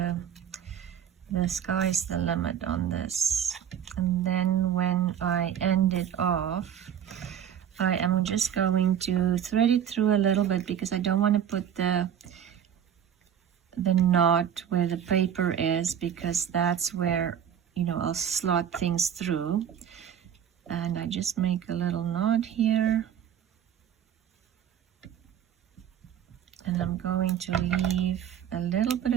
sky's the limit on this. And then when I end it off, I am just going to thread it through a little bit, because I don't want to put the knot where the paper is, because that's where I'll slot things through. And I just make a little knot here, and I'm going to leave a little bit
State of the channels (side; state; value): left; quieter; 9.1 dB